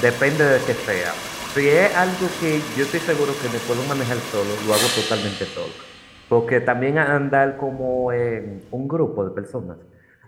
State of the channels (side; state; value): both; identical; correlation 1.00